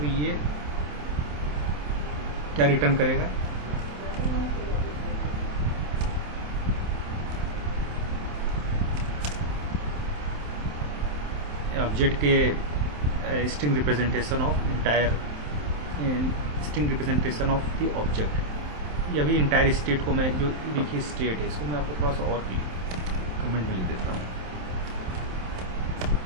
ये क्या रिटर्न करेगा? ऑब्जेक्ट के string representation of string representation of the object. ये अभी इंटायर स्टेट को मैं, जो देखिए स्टेट है, इसको मैं आपको थोड़ा सा और कमेंट में लिख देता हूँ।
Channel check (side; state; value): left; late; 27 ms